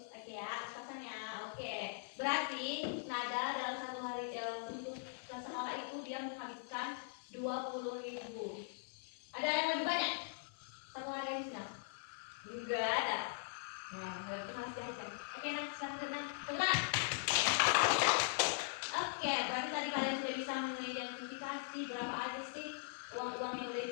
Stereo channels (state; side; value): silent; right; digital silence